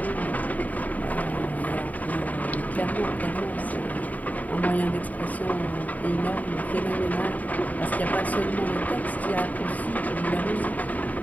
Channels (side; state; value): right; late; 0.074 ms